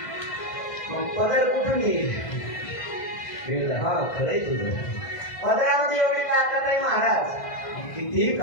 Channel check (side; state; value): right; late; 1.5 ms